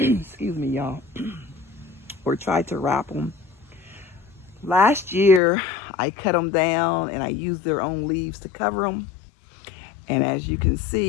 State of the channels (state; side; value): drops out; right; at 5.4 s